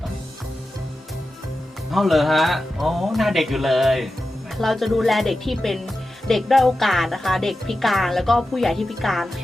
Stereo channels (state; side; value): normal; both; correlation 0.92